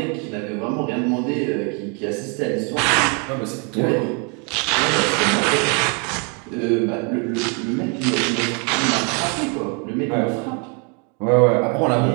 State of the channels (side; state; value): left; quieter; 35.8 dB